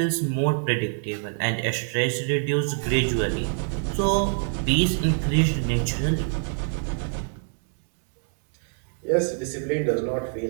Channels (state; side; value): silent; left; digital silence